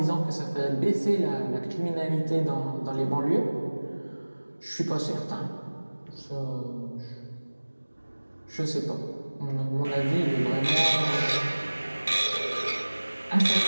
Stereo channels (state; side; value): inverted; both; correlation -1.00